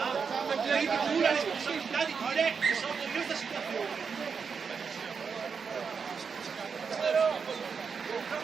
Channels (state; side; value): quieter; left; 5.8 dB